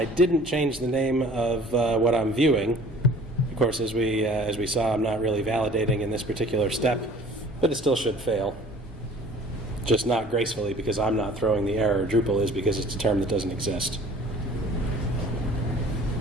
didn't change the name of what I'm viewing. Of course, as we saw, I'm not really validating in this particular step, but it still should fail. Just not gracefully because I'm not throwing the error. Drupal is because it's a term that doesn't exist.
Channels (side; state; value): both; normal; correlation 0.49